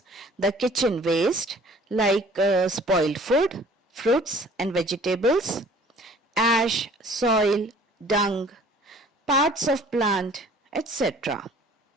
the kitchen waste like spoiled food, fruits and vegetables, ash, soil, dung, parts of plant, etc.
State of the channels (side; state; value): both; normal; correlation 0.52